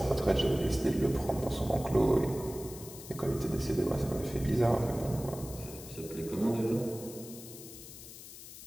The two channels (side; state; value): left; noise; hiss, 14 dB below the sound